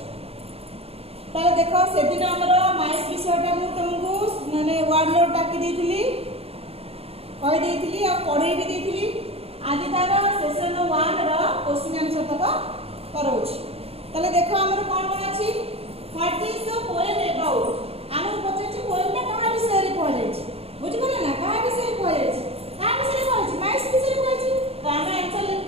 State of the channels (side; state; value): left; late; 0.29 ms